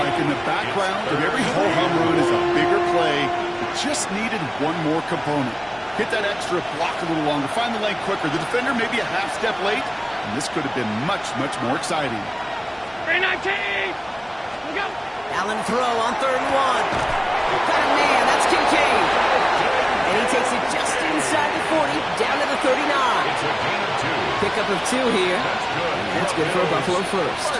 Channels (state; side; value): identical; both; correlation 1.00